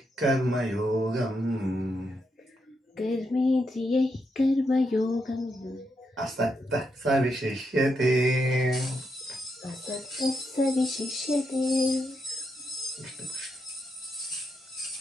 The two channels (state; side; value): normal; both; correlation 0.82